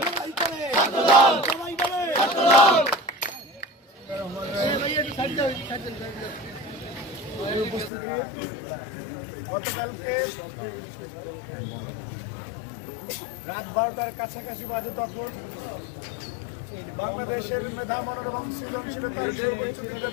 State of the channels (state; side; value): drops out; right; at 7.9 s